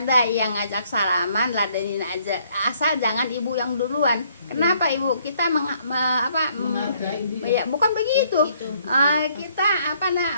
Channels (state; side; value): inverted; both; correlation -0.66